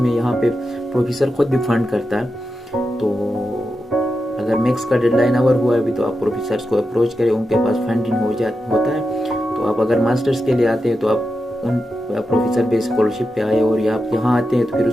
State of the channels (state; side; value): normal; both; correlation 0.89